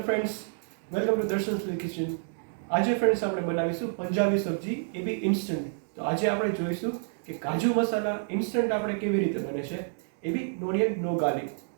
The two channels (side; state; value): left; silent; digital silence